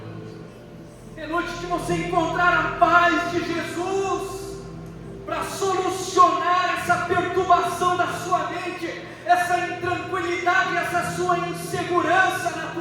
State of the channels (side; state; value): both; identical; correlation 1.00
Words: É noite de você encontrar a paz de Jesus para solucionar essa perturbação da sua mente, essa intranquilidade, essa sua insegurança na